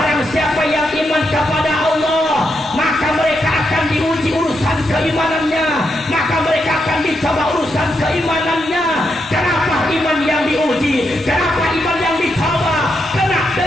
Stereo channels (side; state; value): both; normal; correlation 0.82